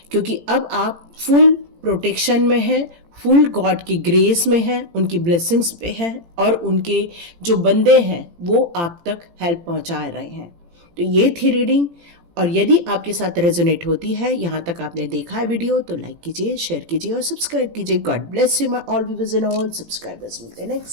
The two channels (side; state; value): left; late; 18 ms